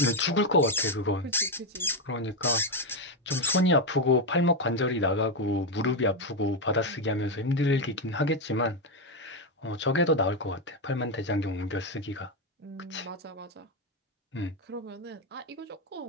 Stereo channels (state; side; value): normal; both; correlation 0.06